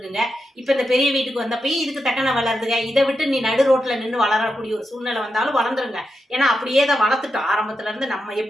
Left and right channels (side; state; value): both; normal; correlation 0.87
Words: இப்ப இந்த பெரிய வீட்டுக்கு வந்தப்பயும் இதுக்கு தக்கன வளருதுங்க. இதை விட்டு நீ நடு ரோட்ல நின்று வளரக்கூடிய ஒரு சூழ்நிலை வந்தாலும் வளர்ந்துருங்க. ஏன்னா அப்படியே தான் வளர்த்துட்டோம் ஆரம்பத்துல இருந்து. நம்ம